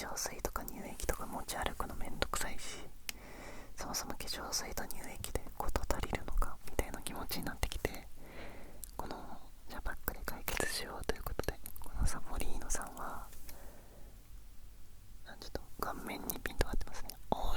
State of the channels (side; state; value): both; identical; correlation 1.00